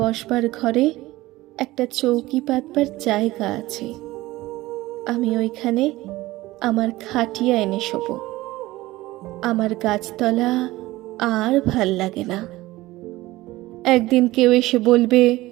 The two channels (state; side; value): quieter; left; 18.2 dB